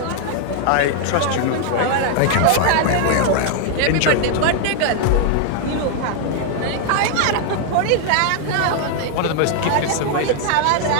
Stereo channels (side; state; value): both; different; correlation 0.00